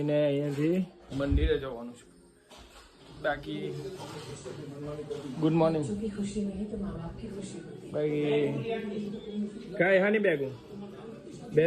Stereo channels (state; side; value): identical; both; correlation 1.00